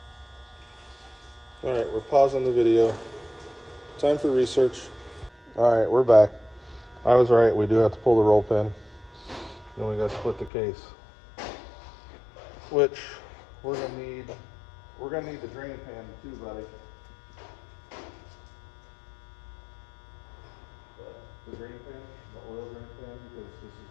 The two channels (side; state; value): right; drops out; at 10.5 s